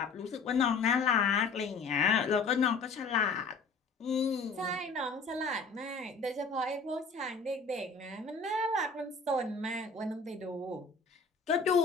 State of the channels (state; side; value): quieter; right; 4.3 dB